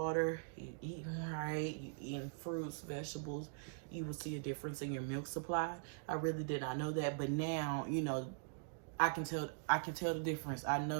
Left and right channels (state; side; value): silent; left; digital silence